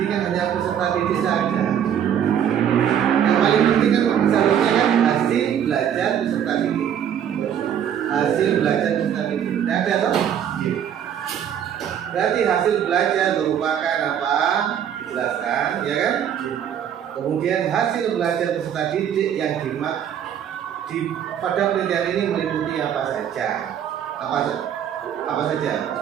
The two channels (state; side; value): quieter; left; 9.2 dB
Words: kan hanya peserta didik saja. paling penting kan seharusnya kan hasil belajar peserta didik. Hasil belajar peserta didik. Nah, ada toh? Berarti hasil belajar merupakan apa? Dijelaskan, ya kan? Kemudian hasil belajar peserta didik yang pada penelitian ini meliputi apa saja? Apa saja?